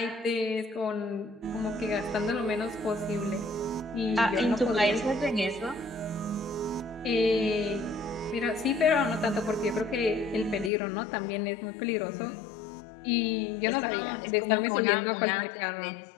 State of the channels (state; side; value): drops out; right; at 10.7 s